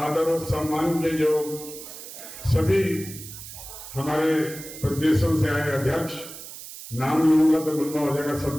और सम्मान के जो सभी हमारे प्रदेशों से आए अध्यक्ष, नाम लूंगा तो लंबा हो जाएगा,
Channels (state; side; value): noise; right; hiss, 13 dB below the sound